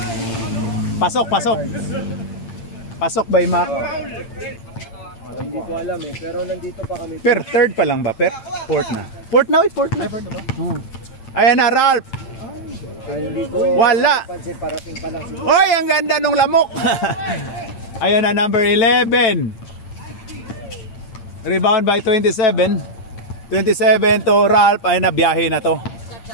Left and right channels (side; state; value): right; late; 8.8 ms